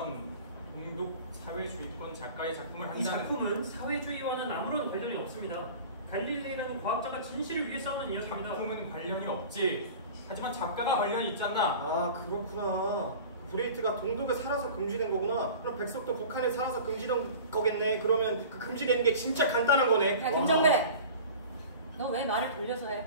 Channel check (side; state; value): both; inverted; correlation -0.40